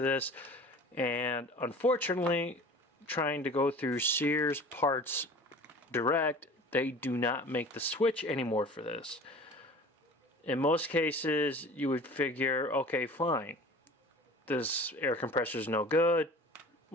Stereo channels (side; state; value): both; normal; correlation 0.42